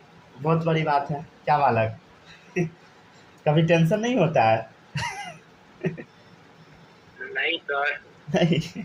बहुत बड़ी बात है, क्या बालक कभी टेंशन नहीं होता है? नहीं सर, नहीं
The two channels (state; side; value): identical; both; correlation 1.00